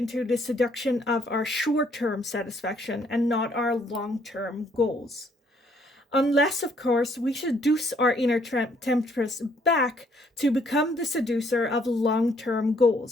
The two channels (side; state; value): both; normal; correlation 0.66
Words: the seduction of our short-term satisfaction and not our long-term goals. Unless, of course, we seduce our inner temptress back to become the seducer of long-term